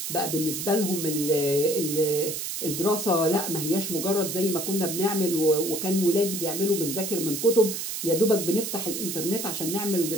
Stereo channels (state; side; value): noise; right; hiss, 4 dB below the sound